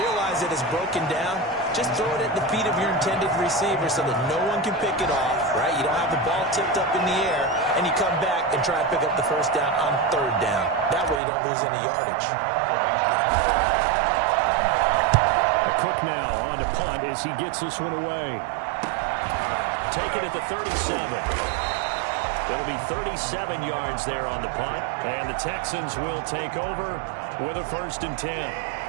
realize it is broken down, just throw it at the feet of your intended receiver so that no one can pick it off, right? You don't have the ball tipped up in the air, and you come back and try to pick up the first down on third down. That way you don't lose any yardage. Cook now on to punt as he gets this one away. Take it at the 37. It'll be 37 yards there on the punt, and the Texans will take over with a 1st and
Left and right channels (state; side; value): drops out; left; at 11.2 s